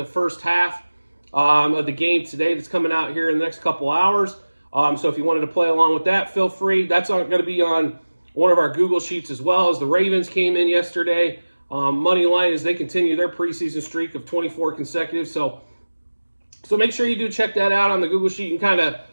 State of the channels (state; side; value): inverted; both; correlation -1.00